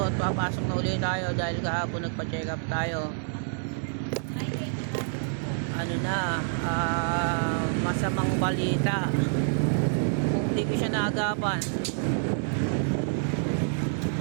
at papasok na ulit tayo dahil kahapon nagpa-check up tayo. Ano na, masamang balita. Kung di ko siya naagapan,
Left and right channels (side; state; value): left; silent; 60 dB below the other